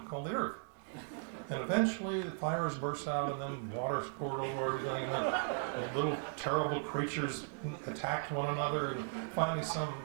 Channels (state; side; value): silent; left; 53 dB below the other